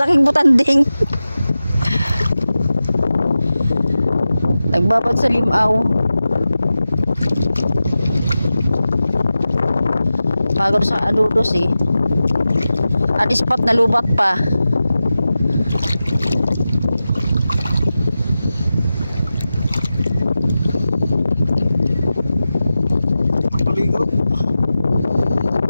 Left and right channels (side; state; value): both; inverted; correlation -0.94